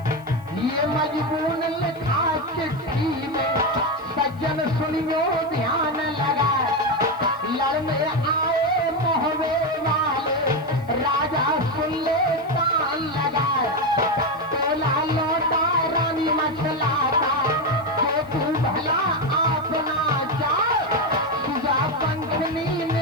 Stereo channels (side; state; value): left; noise; hiss, 30 dB below the sound